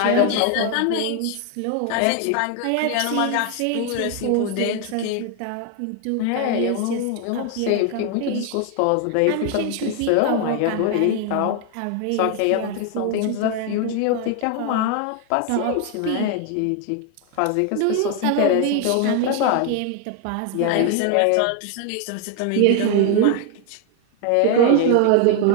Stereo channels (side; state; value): both; different; correlation 0.01